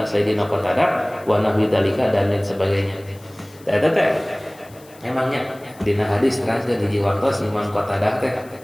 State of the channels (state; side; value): noise; left; hiss, 25 dB below the sound